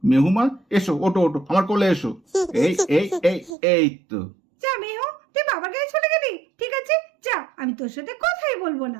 মেহু মা এসো, ওটো ওটো আমার কোলে এসো। এই এই এই এই তো। যা মেহু, তুই বাবার কাছে চলে গেলি, ঠিক আছে যা, আমি তোর সাথে কথাই বলবো না।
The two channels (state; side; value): drops out; left; at 3.6 s